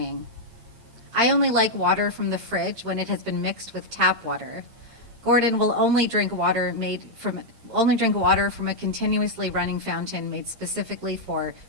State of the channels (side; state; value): left; late; 8.7 ms